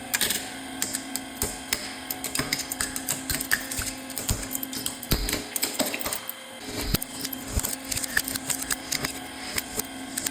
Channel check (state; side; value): identical; both; correlation 1.00